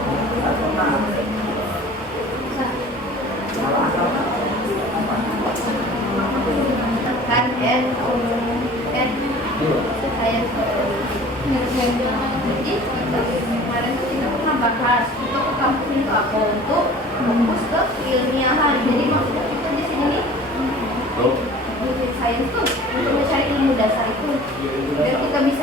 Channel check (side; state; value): both; normal; correlation 0.45